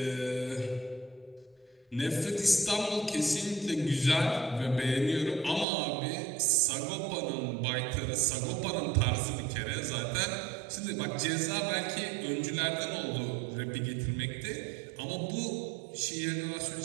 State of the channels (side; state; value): left; drops out; at 5.7 s